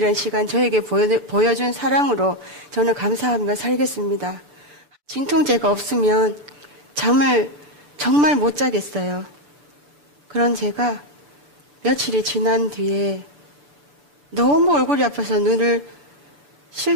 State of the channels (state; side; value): late; left; 6.9 ms